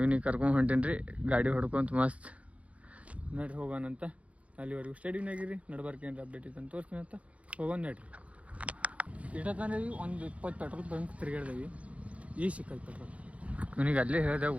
ಕರ್ಕೊಂಡು ಹೊಂಟೀನಿ ರೀ ಗಾಡಿ ಹೊಡ್ಕೊಂತ ಮಸ್ತ್. ನಡ್ರಿ ಹೋಗೋಣಂತ. ಅಲ್ಲಿವರೆಗೂ ಸ್ಟೇಡಿಯಮ್ನಾಗಿರಿ, ನಡ್ಬಾರ್ಕೇನ್ರಿ ಅಪ್ಡೇಟ್ ಇತ್ತು ಅಂತ ತೋರಿಸ್ತೀನಿ ಅಂತ ಹೋಗೋಣ. ನಡ್ರಿ. ಇಟ್ಟತಾನೆ ಒಂದು 20 ಪೆಟ್ರೋಲ್ ಬಂಕ್ ತಿರುಗಾಡ್ದೇವಿ. ಈ ಸಿಕ್ಕೈತೆ ಪೆಟ್ರೋಲ್. ಇವನಿಗೆ ಅಲ್ಲೇ ಹೇಳಿದೆ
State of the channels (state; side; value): late; left; 0.065 ms